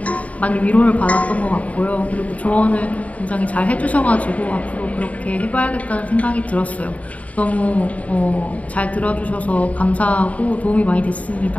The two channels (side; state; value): right; late; 0.068 ms